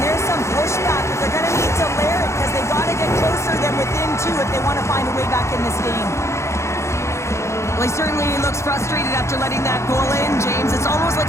there's some pushback, but they're going to need to layer it because they've got to get closer than within two if they want to find a way back in this game. Well, he certainly looks frustrated after letting that goal in, James. It's almost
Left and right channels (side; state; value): right; late; 0.14 ms